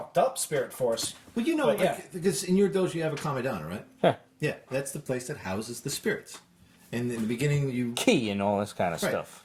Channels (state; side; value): identical; both; correlation 1.00